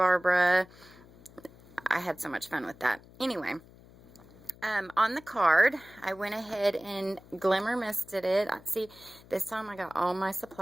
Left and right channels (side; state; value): left; noise; hum, 23 dB below the sound